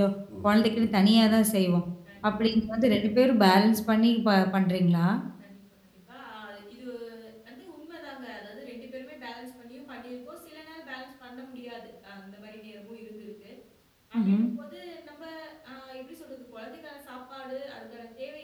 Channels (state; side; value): identical; both; correlation 1.00